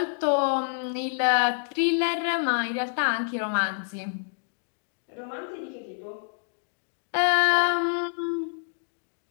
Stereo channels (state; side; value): silent; right; 60 dB below the other